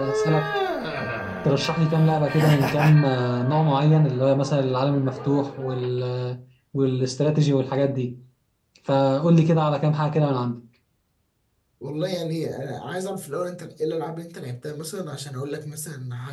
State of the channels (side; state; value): both; identical; correlation 1.00